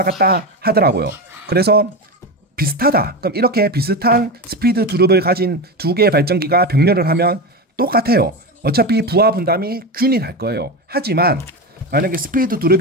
갔다 하더라고요. 그래서 비슷하다. 그럼 이렇게 비슷한 스피드 두릅을 가진 두 개의 발전기가 병렬을 하면 똑같아요. 어차피 부하 분담이 균일할 거예요. 하지만 만약에 스피드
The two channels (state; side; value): normal; both; correlation 0.19